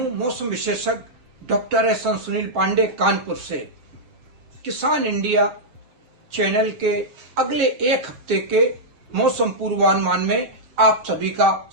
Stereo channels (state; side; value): late; left; 7.7 ms